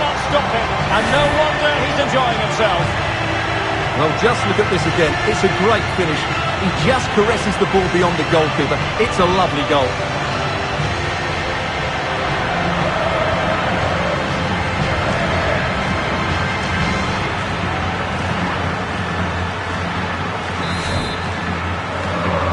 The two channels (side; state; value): both; identical; correlation 1.00